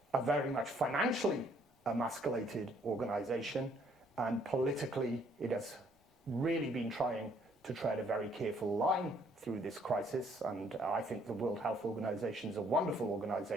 a very much financially emasculated organization, and politically it has really been trying to tread a very careful line through this crisis. And I think the World Health Organization is a wonderful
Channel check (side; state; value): both; normal; correlation 0.65